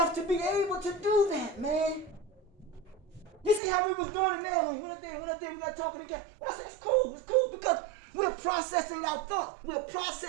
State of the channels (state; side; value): drops out; left; at 3.6 s